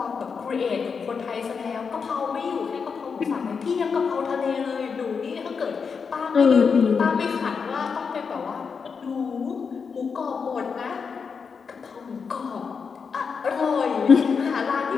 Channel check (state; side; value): quieter; right; 5.7 dB